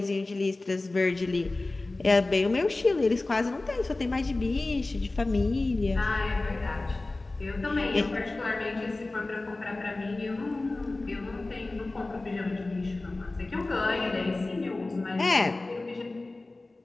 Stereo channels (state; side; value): quieter; right; 3.1 dB